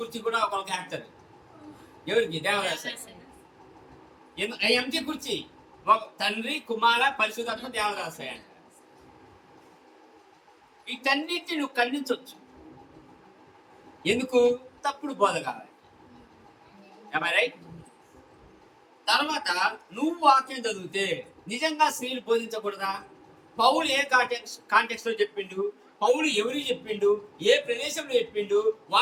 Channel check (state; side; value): identical; both; correlation 1.00